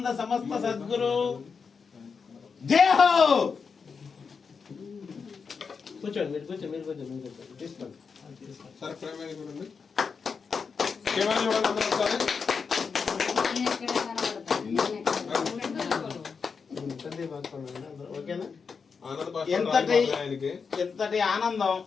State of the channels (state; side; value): quieter; right; 5.5 dB